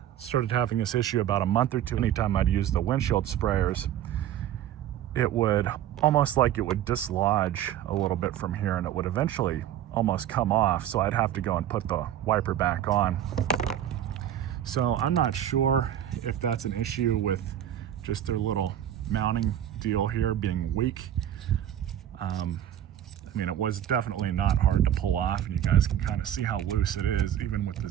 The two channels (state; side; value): quieter; left; 11.0 dB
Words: started having this issue about a month or two. Anytime I'd use the windshield sprayers, it would almost like it would dislodge a little bit from here, and it would eventually almost come off, so I'd have to go and put the wiper back on. So I'm not sure if that's an issue with just their little mounting deal here being weak. I mean, it was definitely not hard to pull off, and you guys can kind of see how loose it is even with the